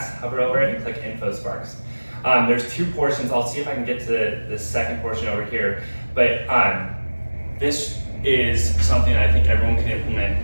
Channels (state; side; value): inverted; both; correlation -1.00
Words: hover over it and click InfoSparks. There's two portions. I'll see if I can get to the second portion over here. But this is something I think everyone can implement